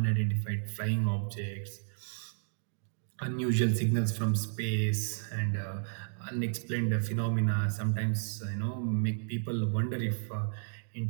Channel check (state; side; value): silent; left; digital silence